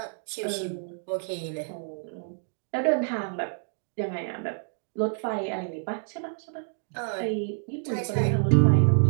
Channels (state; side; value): silent; left; 58 dB below the other